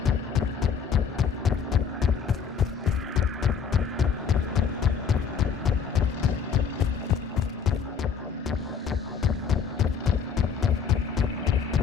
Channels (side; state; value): right; quieter; 6.6 dB